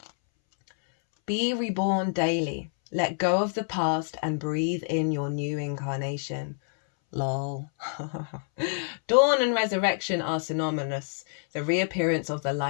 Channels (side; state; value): right; silent; 60 dB below the other